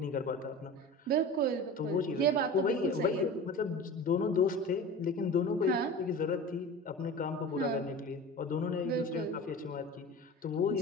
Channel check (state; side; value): normal; both; correlation 0.34